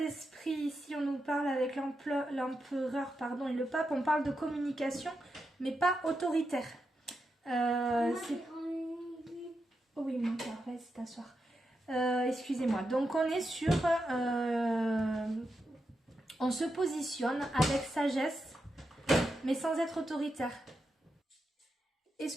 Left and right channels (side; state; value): both; normal; correlation 0.86